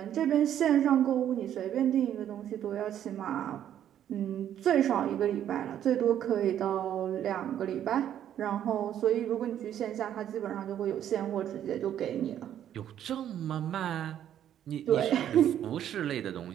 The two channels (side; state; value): left; quieter; 10.5 dB